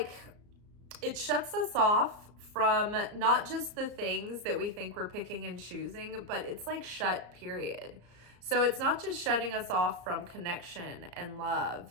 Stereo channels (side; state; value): left; late; 34 ms